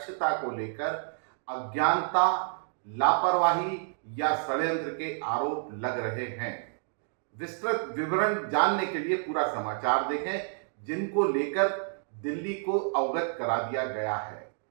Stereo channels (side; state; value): left; silent; digital silence